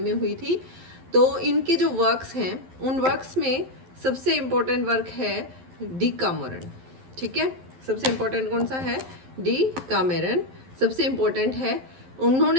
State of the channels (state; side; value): late; left; 11 ms